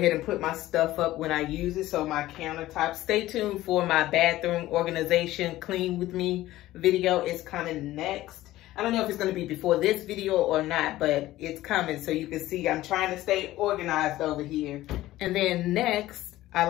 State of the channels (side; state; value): right; quieter; 15.8 dB